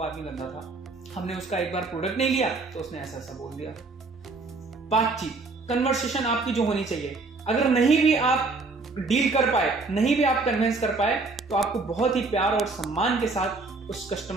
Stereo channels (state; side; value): quieter; left; 3.7 dB